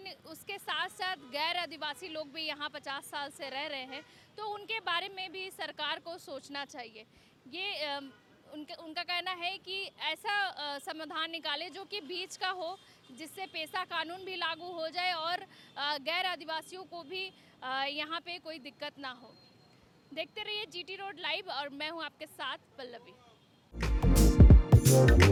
उसके साथ साथ गैर आदिवासी लोग भी यहाँ 50 साल से रह रहे हैं, तो उनके बारे में भी सरकार को सोचना चाहिए। ये उनका कहना है कि ऐसा समाधान निकाले जो कि बीच का हो, जिससे पेशा कानून भी लागू हो जाए और गैर आदिवासियों को भी यहाँ पे कोई दिक्कत ना हो। देखते रहिए GT रोड लाइव और मैं हूँ आपके साथ पल्लवी।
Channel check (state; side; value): identical; both; correlation 1.00